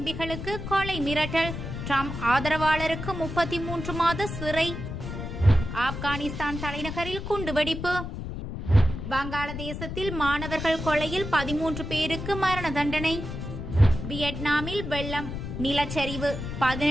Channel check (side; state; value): left; noise; rumble, 7 dB below the sound